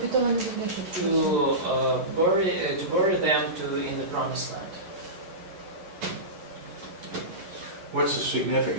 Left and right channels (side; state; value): left; late; 11 ms